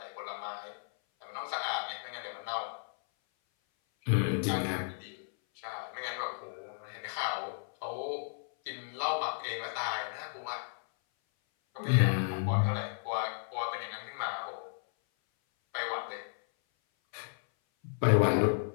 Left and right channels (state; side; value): silent; right; 55 dB below the other